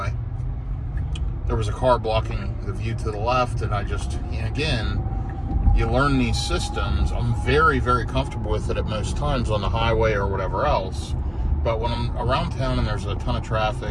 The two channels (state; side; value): identical; both; correlation 1.00